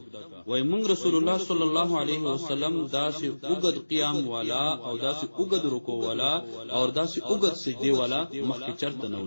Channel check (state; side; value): inverted; both; correlation -1.00